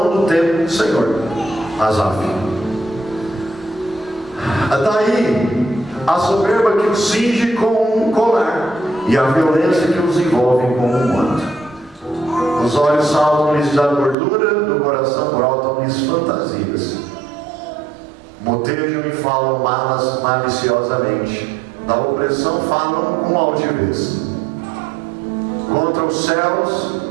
do templo do Senhor. Asaf. Daí a soberba que os cinge com um colar, e a violência que os envolve com um manto. Os olhos saltam-lhes da gordura, do coração brotam-lhes fantasias. Motejam e falam malas maliciosamente, da opressão falam com altivez. Contra os céus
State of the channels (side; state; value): left; drops out; at 14.2 s